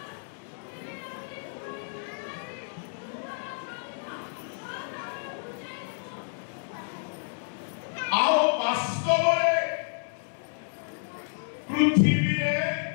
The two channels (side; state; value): right; silent; digital silence